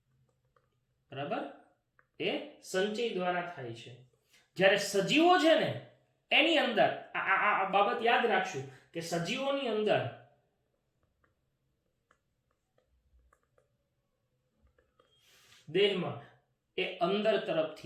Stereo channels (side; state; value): both; identical; correlation 1.00